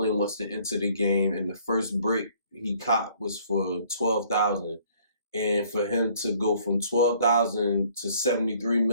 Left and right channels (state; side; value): inverted; both; correlation -0.59